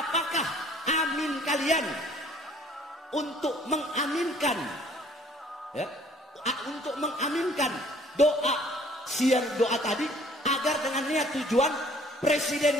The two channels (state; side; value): normal; both; correlation 0.57